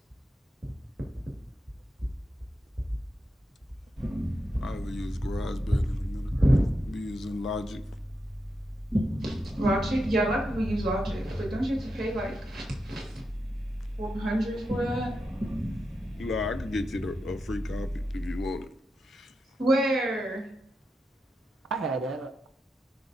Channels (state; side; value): normal; both; correlation 0.87